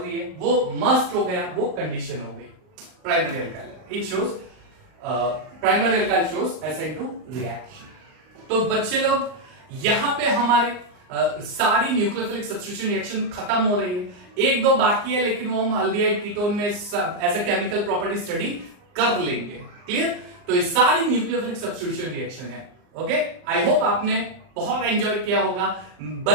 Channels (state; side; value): late; left; 39 ms